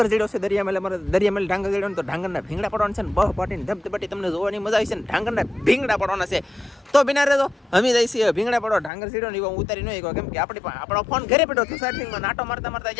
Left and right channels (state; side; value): drops out; right; at 8.9 s